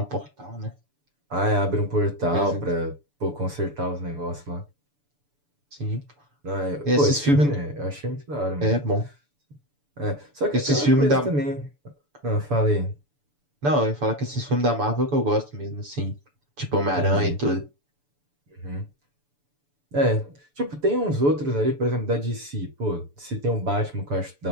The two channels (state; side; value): late; left; 6.9 ms